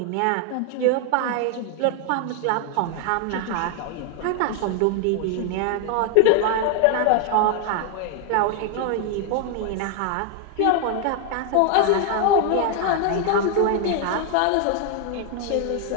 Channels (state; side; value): different; both; correlation 0.00